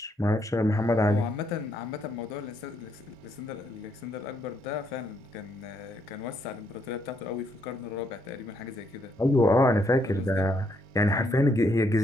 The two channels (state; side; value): normal; both; correlation 0.74